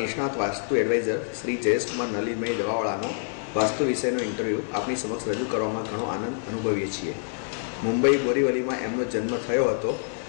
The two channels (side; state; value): right; silent; digital silence